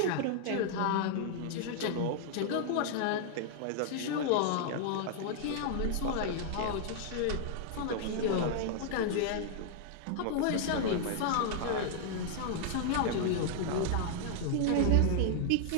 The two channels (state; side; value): different; both; correlation -0.01